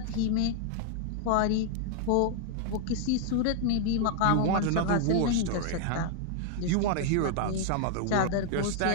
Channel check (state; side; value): different; both; correlation 0.00